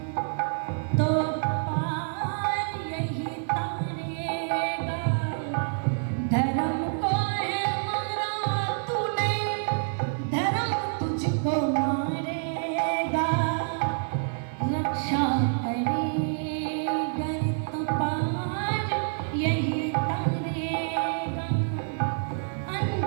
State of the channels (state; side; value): silent; left; 60 dB below the other